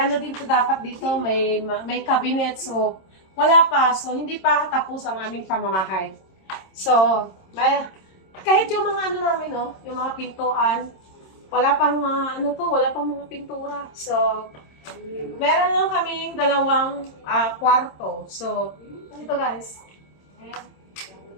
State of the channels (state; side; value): late; right; 26 ms